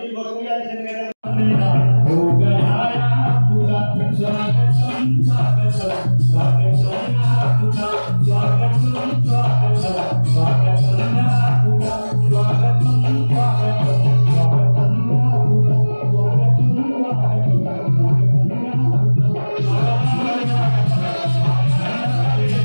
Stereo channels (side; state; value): both; inverted; correlation -1.00